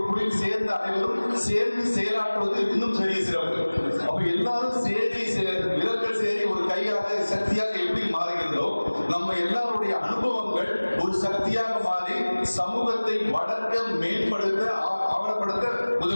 குழியில் சேர்ந்த அனைவரும் சேர்ந்து செயலாற்றுவது இன்னும் பெரிய சிறப்பு. அப்ப எல்லாரும் விரல்கள் சேரி ஒரு கையாக சக்தியாக எப்படி மாறுகிறதோ, நம்ம எல்லாருடைய அனுபவங்கள் ஒரு சக்தியாக மாறி சமூகத்தை வளர்க்க, மேம்படுத்த, ஆவணப்படுத்த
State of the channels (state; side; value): inverted; both; correlation -1.00